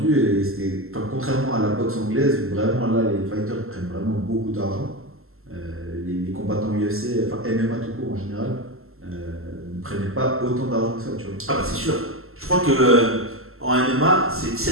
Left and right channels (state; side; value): late; left; 0.62 ms